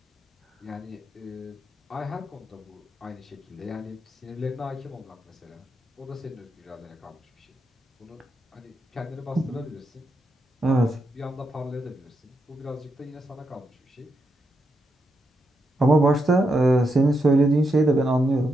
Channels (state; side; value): normal; both; correlation 0.83